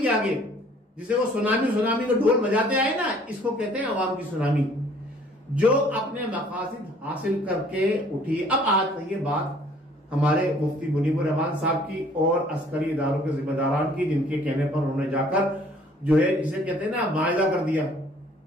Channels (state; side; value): normal; both; correlation 0.57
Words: आगे, जिसे वो सुनामी को ढोल बजाते आए ना, इसको कहते हैं अवाम की सुनामी, जो अपने मकासद हासिल करके उठी। अब आज ये बात हमारे मुफ्ती मुनीबुर रहमान साहब की और अस्करी इदारों के जिम्मेदारान की, जिनके कहने पर उन्होंने जाकर जो है जिसे कहते हैं ना मायदा कर दिया,